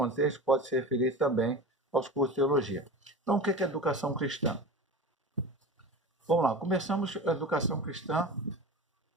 pode se referir também aos cursos de teologia. Então, o que é educação cristã? Vamos lá, começamos a educação cristã.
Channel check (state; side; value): normal; both; correlation 0.32